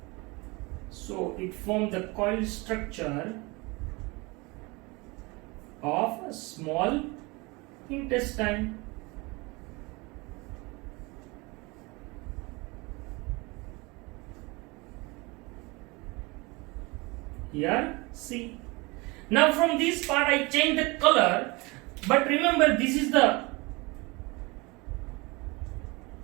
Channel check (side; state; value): left; quieter; 25.7 dB